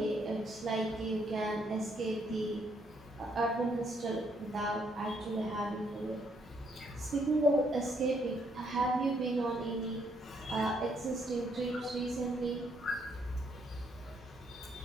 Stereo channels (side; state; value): both; normal; correlation 0.71